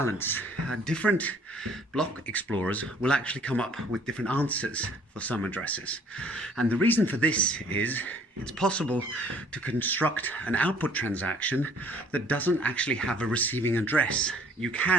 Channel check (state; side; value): normal; both; correlation 0.57